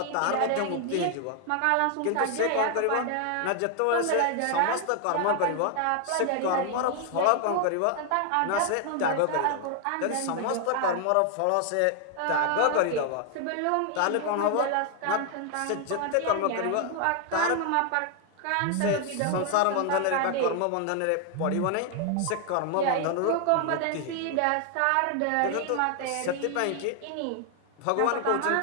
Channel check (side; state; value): both; different; correlation 0.00